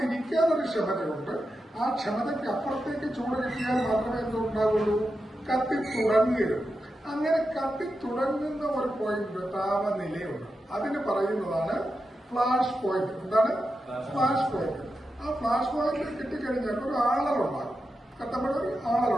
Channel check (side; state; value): both; normal; correlation 0.89